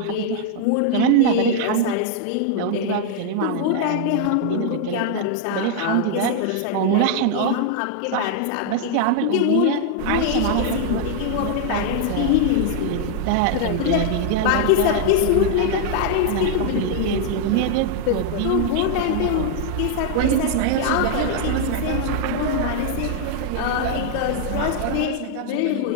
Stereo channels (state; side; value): different; both; correlation 0.00